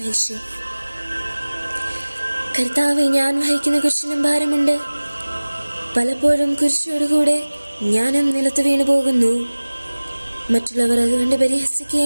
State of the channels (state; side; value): inverted; both; correlation -1.00